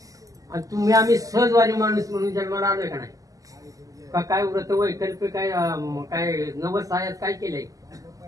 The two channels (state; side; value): late; left; 0.17 ms